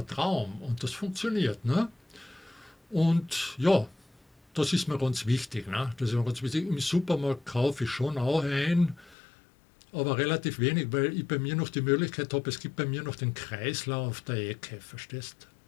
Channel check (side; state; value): right; drops out; at 9.2 s